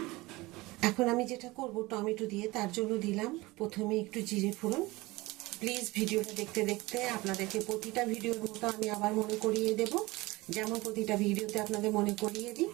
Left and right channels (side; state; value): left; quieter; 21.4 dB